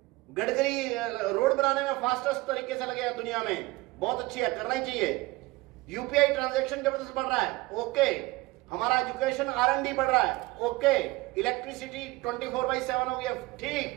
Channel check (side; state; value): left; quieter; 21.0 dB